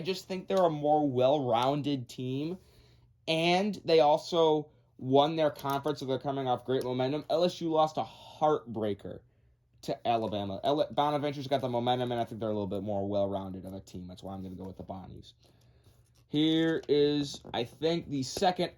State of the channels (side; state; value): both; identical; correlation 1.00